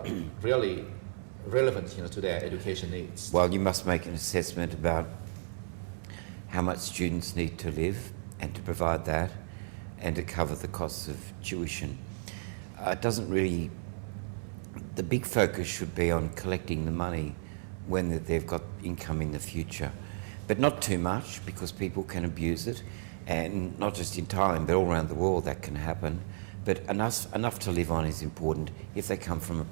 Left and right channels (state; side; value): silent; left; 56 dB below the other